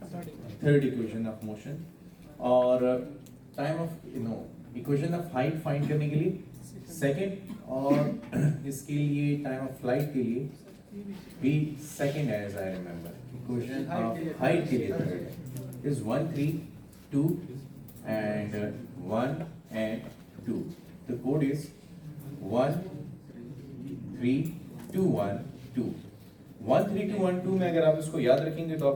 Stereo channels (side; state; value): both; identical; correlation 1.00